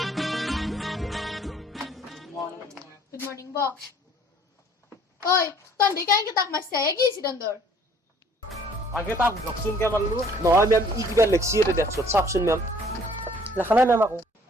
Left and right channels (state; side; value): normal; both; correlation 0.57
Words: Good morning, Bo. Oi, ton di kain kita mas saya কি ছিল তোর? আগে তা জকসুন কে মারলু নহয় ম্যাম ই কিবা লিখছি এটা দেখছো চাপছুন ম্যাম লেখা নাই ম্যাম আকো